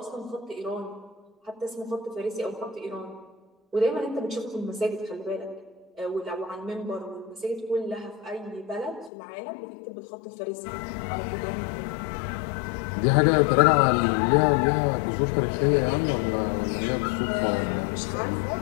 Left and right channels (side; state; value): right; drops out; at 9.1 s